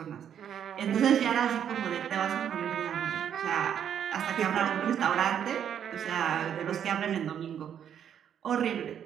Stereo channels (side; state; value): left; quieter; 9.0 dB